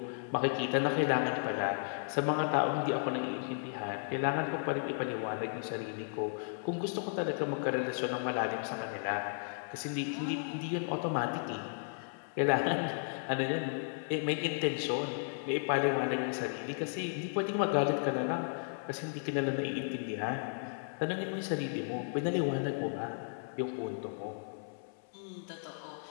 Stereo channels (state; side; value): silent; right; 55 dB below the other